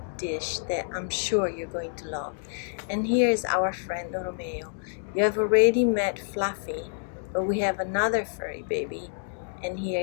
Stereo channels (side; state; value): right; silent; digital silence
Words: dish that I'm sure you're going to love. And here is our friend Romeo. You have already met Fluffy, but we have another furry baby, and